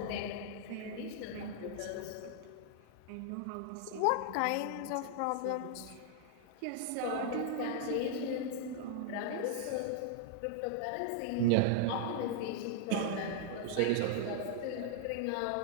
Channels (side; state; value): both; different; correlation -0.01